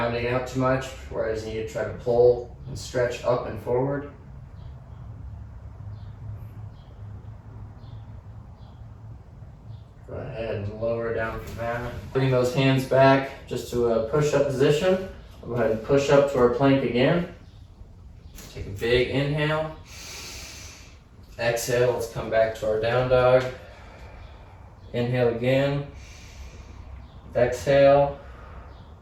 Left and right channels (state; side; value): identical; both; correlation 1.00